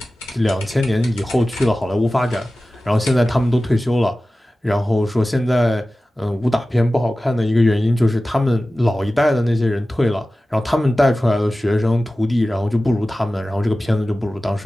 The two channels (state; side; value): normal; both; correlation 0.96